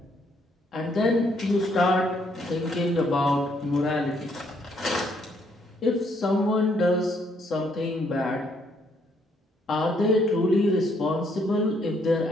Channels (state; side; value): normal; both; correlation 0.70